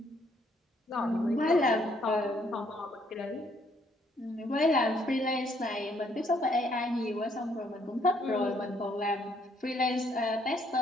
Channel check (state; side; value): normal; both; correlation 0.68